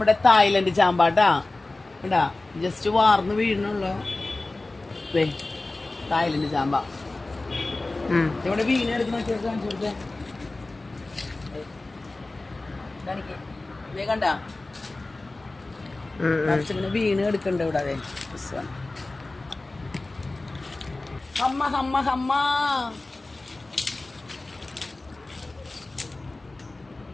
തായ്ലൻഡ് ചാമ്പാട്ടാ. ഇടാ ജസ്റ്റ് വാർന്ന് വീഴണുള്ളൂ. തായ്ലൻഡ് ചാമ്പ ഇവിടെ വീണ് എടുക്കുന്ന കാണിച്ചു കൊടുത്തേ. കണ്ട വീണ് എടുക്കണ്ട ഇവിടെ. അതെ ഹമ്മ ഹമ്മ ഹമ്മ.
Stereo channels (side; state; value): right; quieter; 3.1 dB